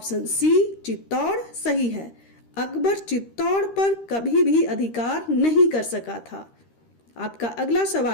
सी चित्तौड़ सही है। अकबर चित्तौड़ पर कभी भी अधिकार नहीं कर सका था। आपका अगला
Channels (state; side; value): late; right; 13 ms